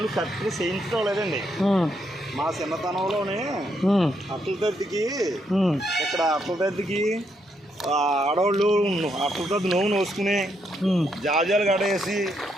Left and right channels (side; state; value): both; normal; correlation 0.77